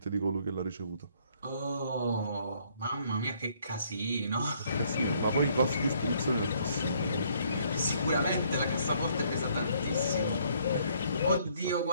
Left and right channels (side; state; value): both; inverted; correlation -0.66